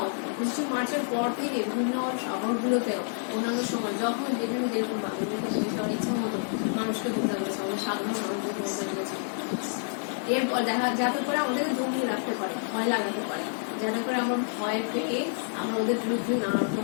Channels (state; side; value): silent; right; digital silence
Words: 25শে মার্চের পর থেকে বিভিন্ন শহরগুলোতেও অন্যান্য সময় যখন যেখানে যেরকম বাংলাদেশের ইচ্ছা মতো মানুষকে হত্যা করেছে, আমাদের সাধারণ মানুষকে হত্যা করেছে। এরপর যাতে করে আমাদেরকে জমিয়ে রাখতে পারে, ভয় লাগাতে পারে, যাতে করে আমরা ভয় পেয়ে আমরা ওদের বিরুদ্ধে নানা